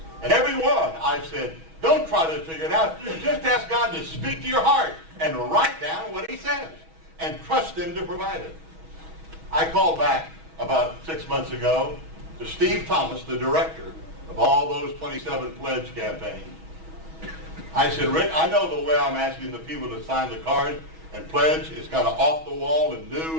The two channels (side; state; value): left; late; 6.2 ms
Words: And every one I've said, don't try to figure it out. Just ask God to speak to your heart and write down what he says and trust him to provide it. I called back about 6 months ago to Steve Thomas, the director of all those 27 pledge campaigns. I said, Rick, I know the way I'm asking the people to sign the card and pledge is kind of off the wall and new